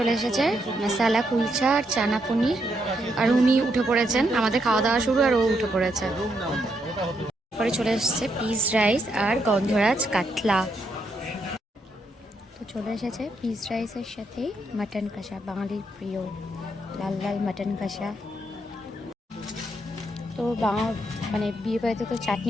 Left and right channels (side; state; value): both; normal; correlation 0.78